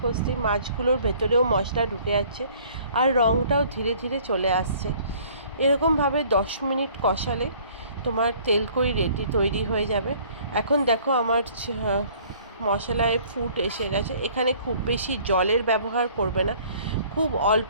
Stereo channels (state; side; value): inverted; both; correlation -0.55